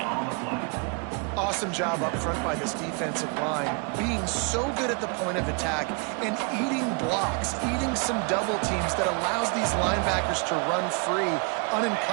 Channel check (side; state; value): left; quieter; 34.2 dB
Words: Awesome job up front by this defensive line, being so good at the point of attack and eating blocks, eating some double teams that allows these linebackers to run free,